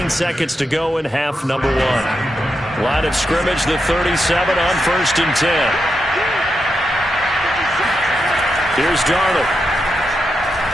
seconds to go in half number 1. Line of scrimmage, the 37 on 1st and 10. Here's Darnold.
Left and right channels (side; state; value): both; normal; correlation 0.86